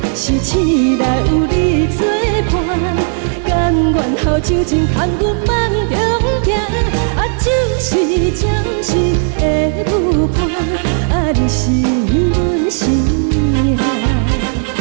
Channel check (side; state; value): left; silent; digital silence